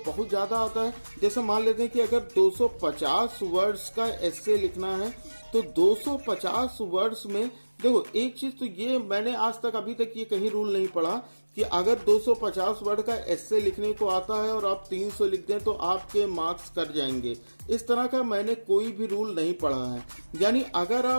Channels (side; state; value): both; inverted; correlation -1.00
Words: बहुत ज्यादा आता है। जैसे मान लेते हैं कि अगर 250 वर्ड्स का एस्से लिखना है तो 250 वर्ड्स में देखो एक चीज तो ये मैंने आज तक अभी तक ये कहीं रूल नहीं पढ़ा कि अगर 250 वर्ड का एस्से लिखने को आता है और आप 300 लिख दें तो आपके मार्क्स कट जाएंगे। इस तरह का मैंने कोई भी रूल नहीं पढ़ा है। यानी अगर